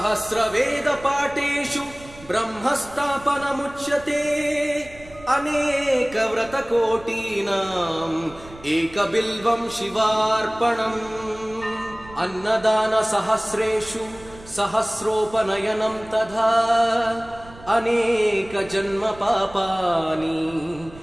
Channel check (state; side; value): noise; right; rumble, 20 dB below the sound